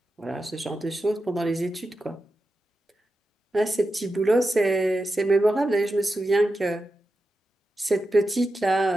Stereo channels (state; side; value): normal; both; correlation 0.90